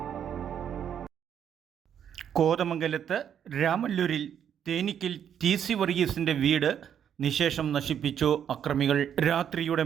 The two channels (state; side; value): quieter; left; 8.9 dB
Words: കോതമംഗലത്ത് രാമല്ലൂരിൽ തേനിക്കിൽ TC വർഗീസിന്റെ വീട് നിശേഷം നശിപ്പിച്ചു അക്രമികൾ. രാത്രിയുടെ